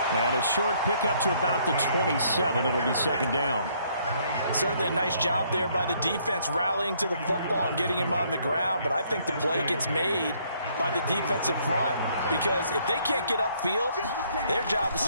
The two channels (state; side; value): inverted; both; correlation -0.67